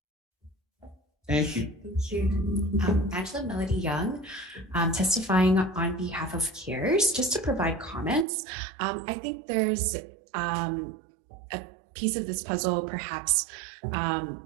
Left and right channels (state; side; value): drops out; left; at 8.2 s